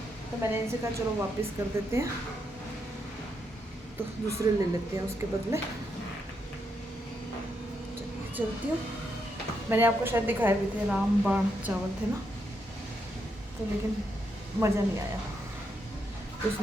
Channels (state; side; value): normal; both; correlation 0.80